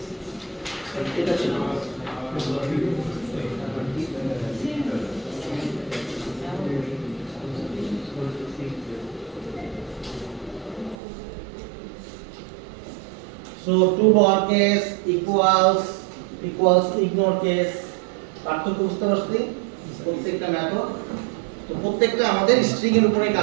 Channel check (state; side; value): drops out; left; at 11.0 s